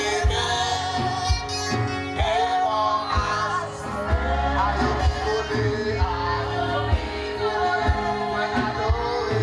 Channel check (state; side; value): identical; both; correlation 1.00